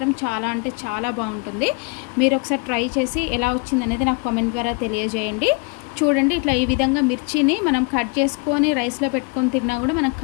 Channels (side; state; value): right; quieter; 30.5 dB